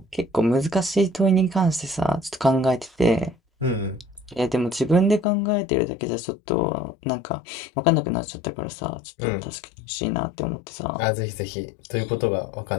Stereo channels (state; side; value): drops out; right; at 5.2 s